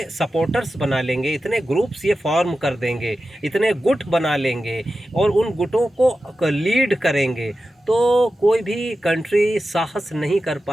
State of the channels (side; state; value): both; normal; correlation 0.93